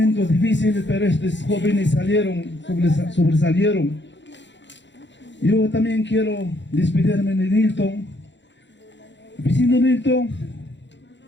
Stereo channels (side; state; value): right; late; 0.53 ms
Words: difíciles, pero estos jóvenes sobresalieron. Yo también quiero despedirme de Nilton. Vecino Nilton,